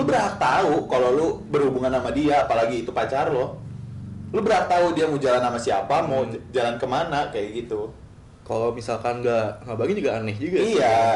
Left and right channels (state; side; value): identical; both; correlation 1.00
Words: berhak tahu kalau lu berhubungan sama dia, apalagi itu pacar lo. Lu berhak tahu dia mau jalan sama siapa, mau jalan kemana, kayak gitu. Kalau misalkan nggak ngabarin juga aneh juga.